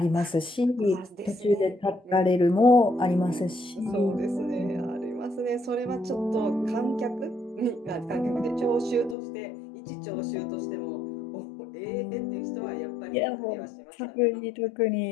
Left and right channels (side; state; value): right; drops out; at 9.2 s